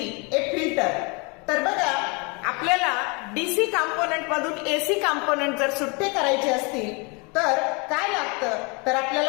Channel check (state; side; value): quieter; right; 30.7 dB